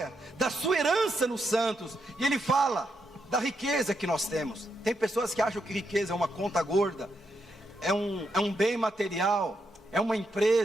da sua herança nos santos. E ele fala da riqueza que nós temos. Tem pessoas que acham que riqueza é uma conta gorda, é um bem material, é uma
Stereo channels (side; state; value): both; normal; correlation 0.81